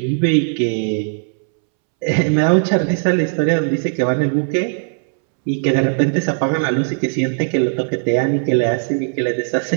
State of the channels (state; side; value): silent; left; 67 dB below the other